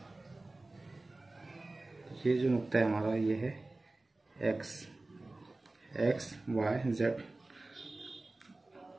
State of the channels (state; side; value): quieter; left; 3.0 dB